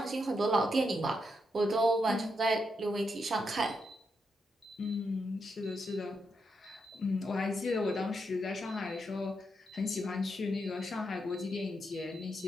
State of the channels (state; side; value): normal; both; correlation 0.82